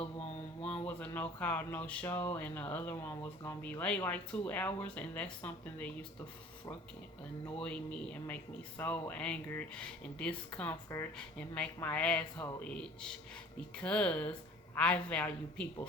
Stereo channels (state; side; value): normal; both; correlation 0.47